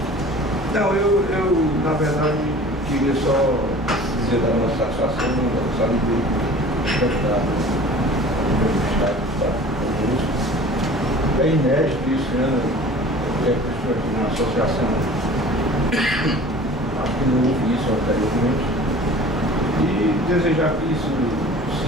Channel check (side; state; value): both; normal; correlation 0.44